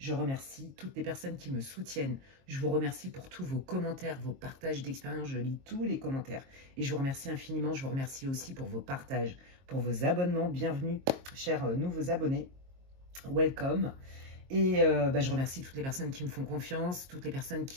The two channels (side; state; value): left; late; 22 ms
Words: remercie toutes les personnes qui me soutiennent. Je vous remercie pour tous vos commentaires, vos partages d'expérience. Je lis tous les commentaires. Et je vous remercie infiniment. Je vous remercie aussi pour vos partages, pour vos abonnements. Bienvenue, chers nouveaux abonnés. Welcome. Et je remercie toutes les personnes qui me font confiance, toutes les personnes